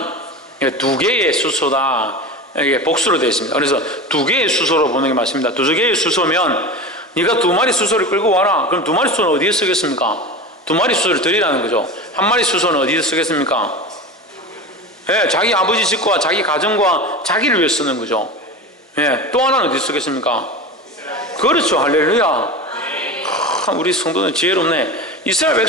2개의 수소다, 이게 복수로 되어 있습니다. 그래서 2개의 수소로 보는 게 맞습니다. 2개의 수소면 네가 2마리 수소를 끌고 와라. 그럼 2마리 수소는 어디에 쓰겠습니까? 2마리 수소를 드리라는 거죠. 1마리 수소는 어디에 쓰겠습니까? 예, 자기 아버지 집과 자기 가정과 자기를 위해 쓰는 거죠. 예, 또 하나는 어디 쓰겠습니까? 그렇죠. 할렐루야. 우리 성도는 지혜롭네. 이스라엘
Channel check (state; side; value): normal; both; correlation 0.28